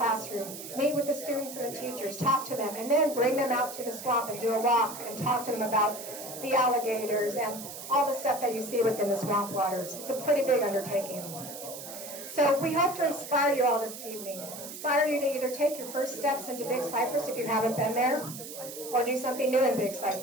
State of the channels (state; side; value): noise; right; hiss, 11 dB below the sound